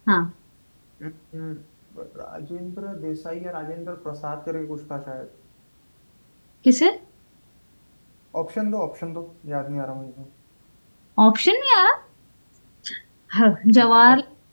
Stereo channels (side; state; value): both; inverted; correlation -1.00